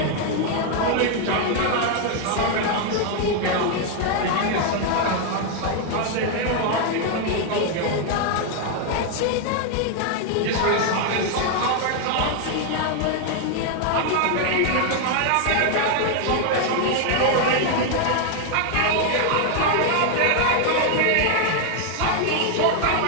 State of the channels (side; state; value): both; different; correlation 0.00